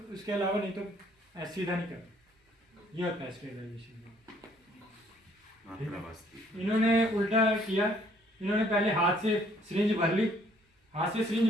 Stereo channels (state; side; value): normal; both; correlation 0.63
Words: उसके अलावा नहीं तो ऐसे सीधा नहीं करना। ये होता है स्टेरिलाइजेशन। मात्रा बस्ती। इन्होंने उल्टा किया, इन्होंने पहले हाथ से सिरिंज भर ली, हाथ से